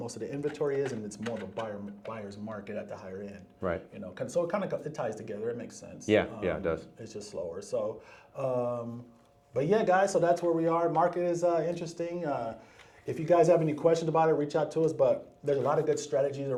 of the inventory is, and it's more of a buyer's market at the higher end. Right. So it ties together. It makes sense. Yeah, it does. It's just slower. So, but yeah, guys. So that's where we are. Market is interesting. If you guys have any questions about it, reach out to us. But there's a lot of good strategies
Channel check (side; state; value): both; identical; correlation 1.00